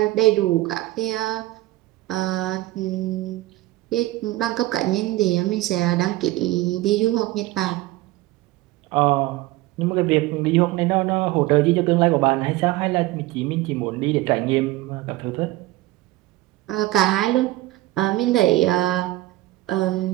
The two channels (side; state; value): left; quieter; 17.6 dB